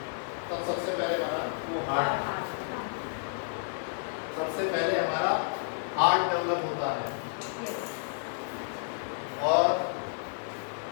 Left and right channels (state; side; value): silent; right; digital silence